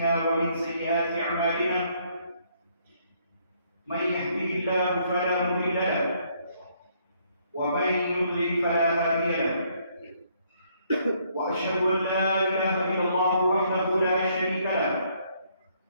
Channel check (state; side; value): inverted; both; correlation -0.69